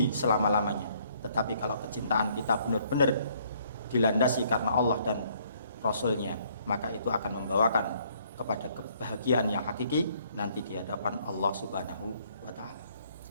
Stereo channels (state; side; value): inverted; both; correlation -0.65